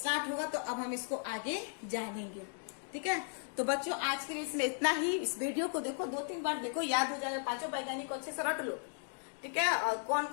होगा, तो अब हम इसको आगे जानेंगे, ठीक है। तो बच्चों आज के लिए इसमें इतना ही। इस वीडियो को देखो, 2-3 बार देखो, याद हो जाएगा। 5 वैज्ञानिक को अच्छे से रट लो, ठीक है। और कौन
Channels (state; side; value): silent; right; 54 dB below the other